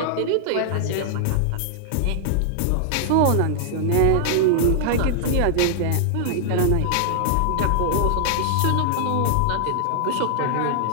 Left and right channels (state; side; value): different; both; correlation -0.01